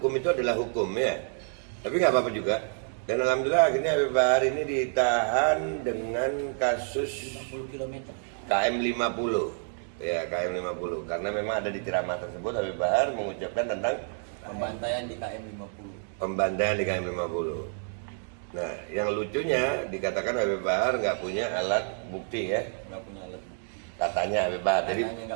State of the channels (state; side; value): silent; left; 59 dB below the other